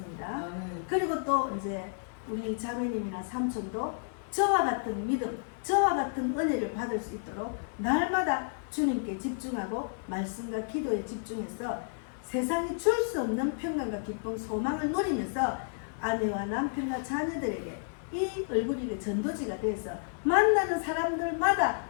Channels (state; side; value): silent; right; 57 dB below the other